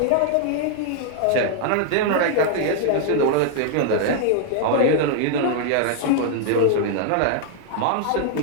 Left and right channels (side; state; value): both; different; correlation 0.00